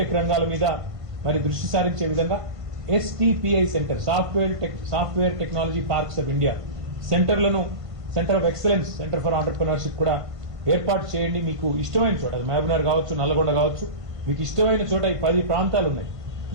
రంగాల మీద మరి దృష్టి సారించే విధంగా STPI centre, software technology parks of India సెంటర్లను, centre of excellence, centre for entrepreneurship కూడా ఏర్పాటు చేయండి. మీకు ఇష్టమైన చోట, అది మహబూబ్నగర్ కావచ్చు, నల్లగొండ కావచ్చు, మీకు ఇష్టమైన చోట ఈ 10 ప్రాంతాలు ఉన్నాయి.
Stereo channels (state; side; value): late; left; 1.5 ms